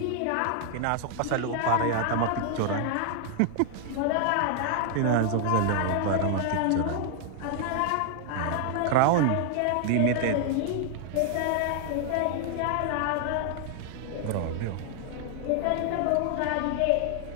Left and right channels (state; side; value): different; both; correlation 0.00